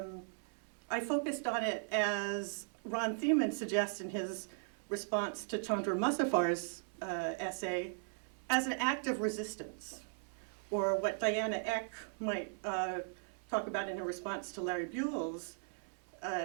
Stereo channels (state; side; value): silent; left; digital silence